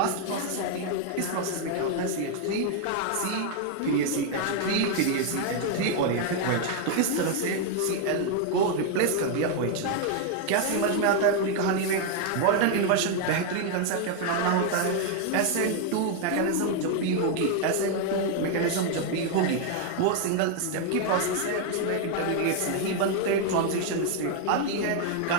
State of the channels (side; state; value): both; different; correlation 0.01